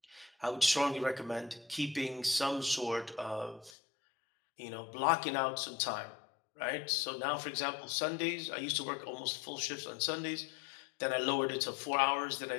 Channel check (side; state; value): right; drops out; at 3.8 s